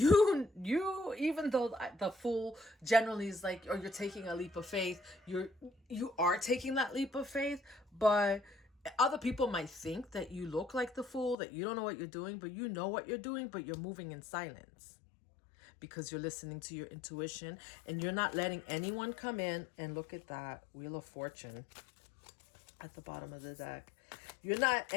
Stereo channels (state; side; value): drops out; right; at 11.4 s